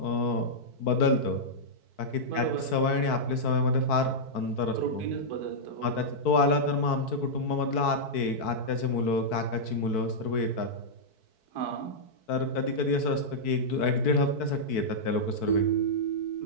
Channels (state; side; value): late; right; 4.6 ms